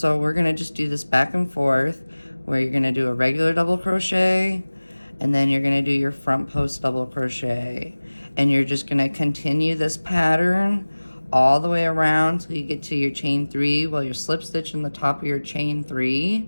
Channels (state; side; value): inverted; both; correlation -1.00